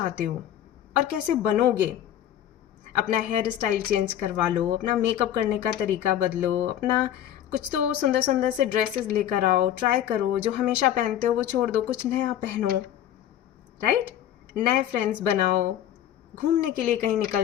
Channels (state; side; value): quieter; right; 11.2 dB